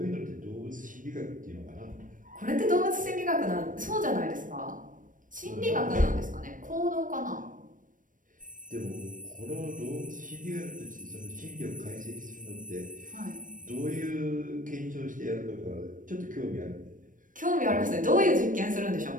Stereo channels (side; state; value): left; late; 0.38 ms